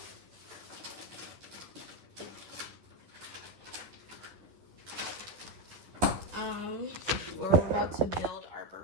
We're about to build our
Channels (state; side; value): late; left; 11 ms